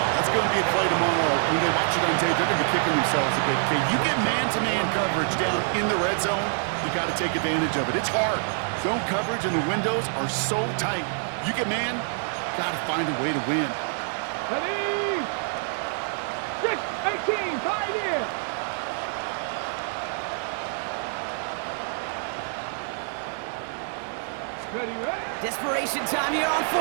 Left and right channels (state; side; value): silent; left; 61 dB below the other